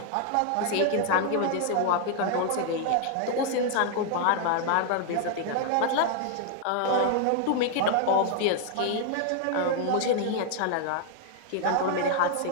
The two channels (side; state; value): both; different; correlation 0.00